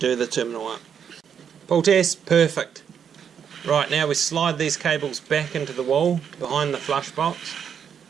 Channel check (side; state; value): left; quieter; 7.8 dB